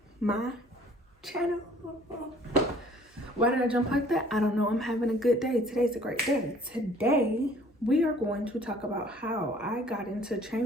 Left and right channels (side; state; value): both; normal; correlation 0.55